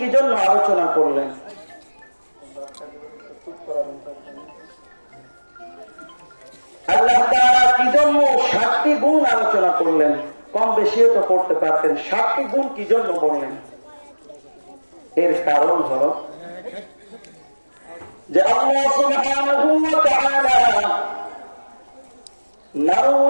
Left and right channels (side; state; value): both; inverted; correlation -1.00